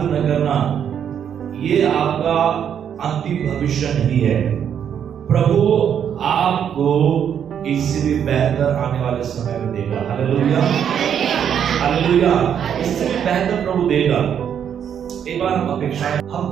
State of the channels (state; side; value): quieter; left; 8.6 dB